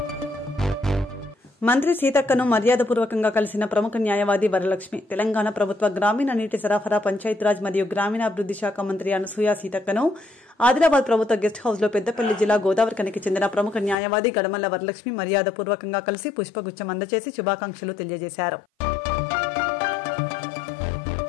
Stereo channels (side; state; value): right; drops out; at 14.0 s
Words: మంత్రి సీతక్కను మర్యాదపూర్వకంగా కలిసిన ప్రముఖ న్యాయవాది వరలక్ష్మి. తెలంగాణ ప్రభుత్వ గ్రామీణ నీటి సరఫరా, పంచాయతీరాజ్ మరియు గ్రామీణాభివృద్ది శాఖ మంత్రి అనసూయ సీతక్కను ఆదిలాబాద్ ప్రభుత్వ గెస్ట్ హౌస్ లో పెద్దపల్లి జిల్లా గోదావరిఖనికి చెందిన ప్రముఖ న్యాయవాది గడమల్ల వరలక్ష్మి మర్యాదపూర్వకంగా కలిసి పుష్పగుచ్చం అందజేసి శుభాకాంక్షలు తెలియజేశారు.